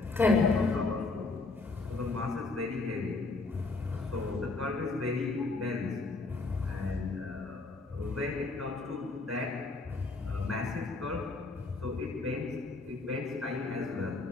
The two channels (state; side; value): quieter; right; 3.6 dB